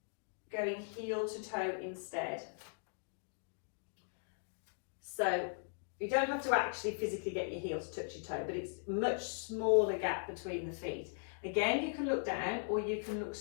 going heel to toe instead. So you don't have to actually physically get your heel to touch your toe, but it's a much smaller gap between the feet. Again, you can look down or you can look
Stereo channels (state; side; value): silent; right; digital silence